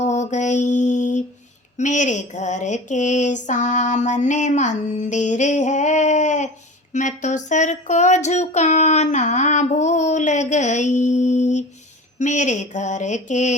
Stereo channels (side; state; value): both; normal; correlation 0.36